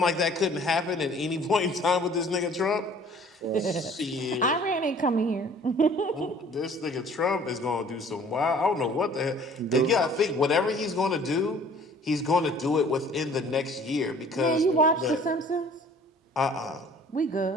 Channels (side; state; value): both; normal; correlation 0.52